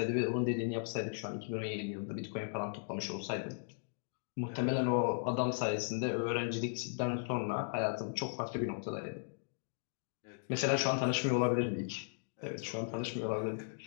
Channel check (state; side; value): silent; right; digital silence